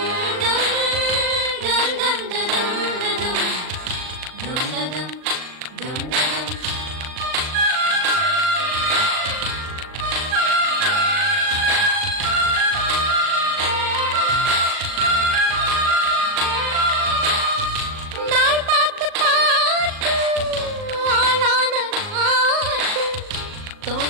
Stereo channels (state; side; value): late; left; 38 ms